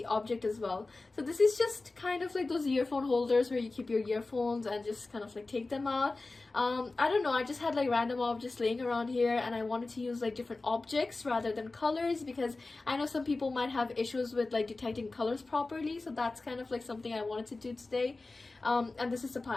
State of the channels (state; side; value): quieter; right; 3.4 dB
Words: object as well. So this is just kind of like those earphone holders where you keep your earphones and just kind of like take them out. I don't know, I just had like random objects laying around here, and I wanted to use like different objects rather than colors, because I know some people might have issues with like detecting colors properly. So that's kind of like something I wanted to do today. And this is the